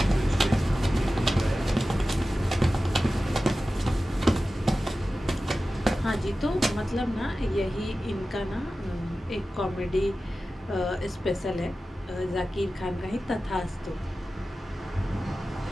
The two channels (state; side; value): normal; both; correlation 0.95